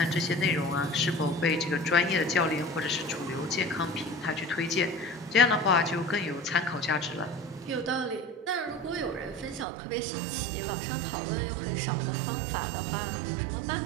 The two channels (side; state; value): left; drops out; at 9.7 s